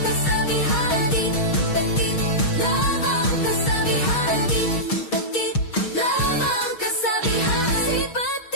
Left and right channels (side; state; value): right; late; 6.4 ms